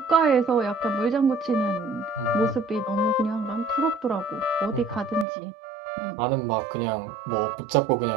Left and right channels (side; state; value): left; drops out; at 5.2 s